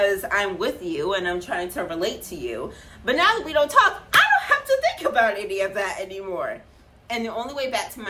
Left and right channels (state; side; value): identical; both; correlation 1.00